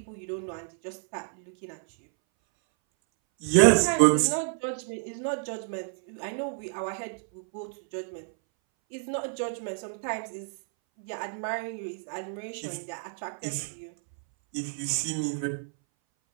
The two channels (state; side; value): silent; left; 58 dB below the other